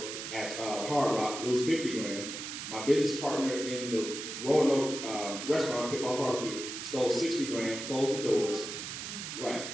at Hard Rock, lose $50,000. My business partner in the Roanoke restaurant, Pitboss Barbecue, stole $60,000, closed the doors. Right,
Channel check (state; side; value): noise; right; hiss, 7 dB below the sound